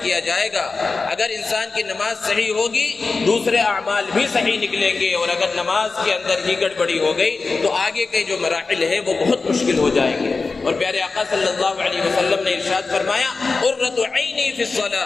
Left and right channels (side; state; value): right; quieter; 4.1 dB